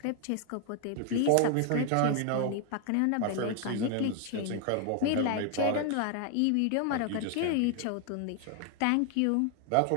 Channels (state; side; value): different; both; correlation 0.00